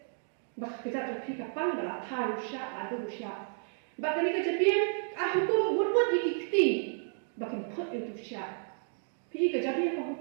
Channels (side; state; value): left; silent; digital silence